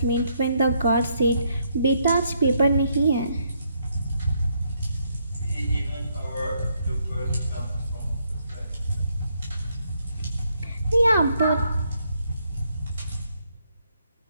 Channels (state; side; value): inverted; both; correlation -0.74